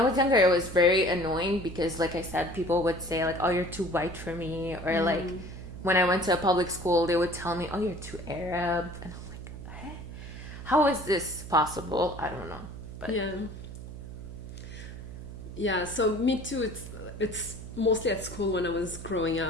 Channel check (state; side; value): noise; right; hum, 11 dB below the sound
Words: was younger, it was very annoying because, like I said, people would say like, "Oh, you're too white for me," or like, when I went to a public school, they would tell me, "Oh, you're too Arab," and I'm like, "Hey, how is this possible?" I don't know, but yeah. So me too. It's mostly at school when I was growing